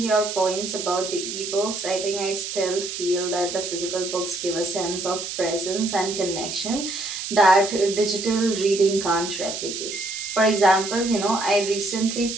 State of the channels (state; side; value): noise; right; hiss, 6 dB below the sound